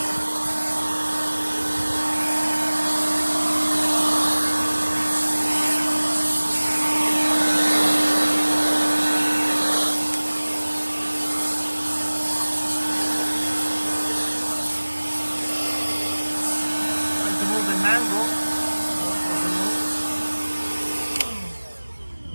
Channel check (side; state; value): both; inverted; correlation -1.00